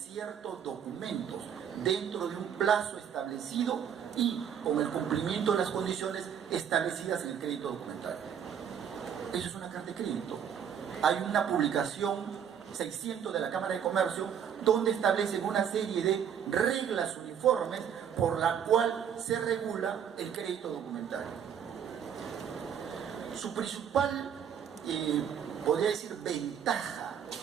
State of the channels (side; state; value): left; quieter; 8.4 dB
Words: documentos dentro de un plazo establecido y con el cumplimiento de las condiciones establecidas en el crédito documentario. Eso es una carta de crédito. Hay una publicación 600 de la Cámara de Comercio donde establecen una serie de reglas uniformes por la cual se regula el crédito documentario. Su principal, podría decir, ventaja